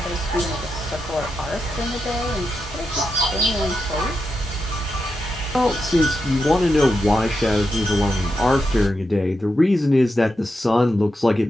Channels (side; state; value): both; normal; correlation 0.87